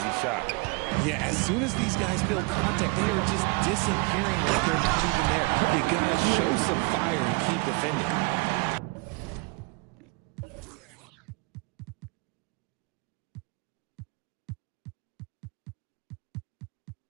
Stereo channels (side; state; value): left; quieter; 27.8 dB